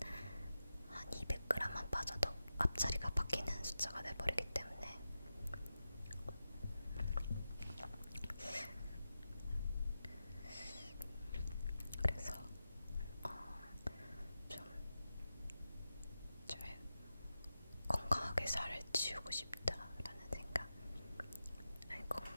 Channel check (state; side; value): inverted; both; correlation -0.91